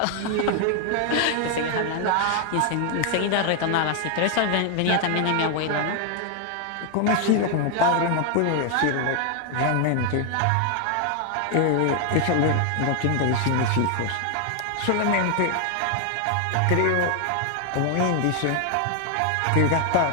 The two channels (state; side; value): different; both; correlation 0.00